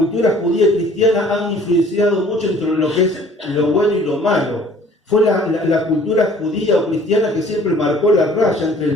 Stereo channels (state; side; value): normal; both; correlation 0.53